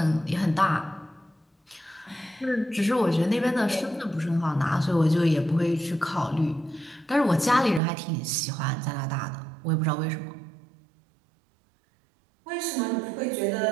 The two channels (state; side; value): drops out; left; at 7.8 s